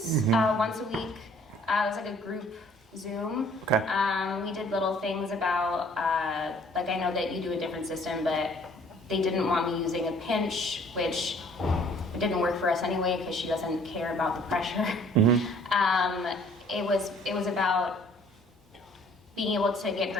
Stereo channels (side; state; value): both; normal; correlation 0.57